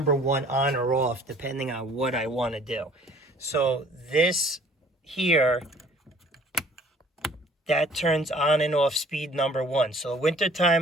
1 on or off depending on what I want to do. So this here, that turns on and off speed number 1. So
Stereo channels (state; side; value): normal; both; correlation 0.54